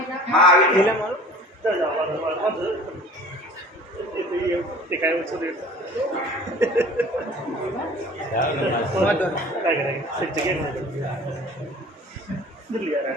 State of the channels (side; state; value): both; normal; correlation 0.45